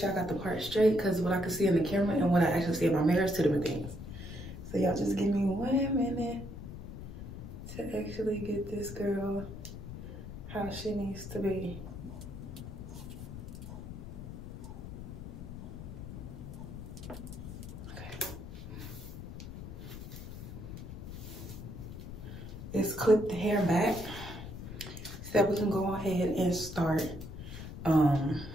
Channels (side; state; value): left; noise; rumble, 10 dB below the sound